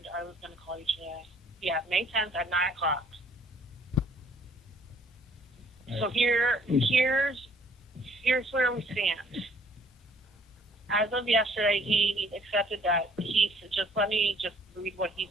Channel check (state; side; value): normal; both; correlation 0.59